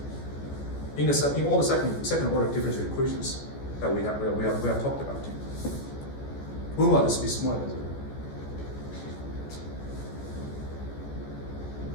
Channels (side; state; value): right; late; 14 ms